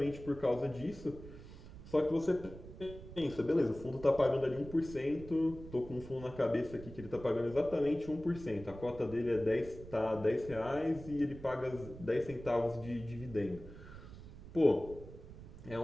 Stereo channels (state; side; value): noise; right; rumble, 15 dB below the sound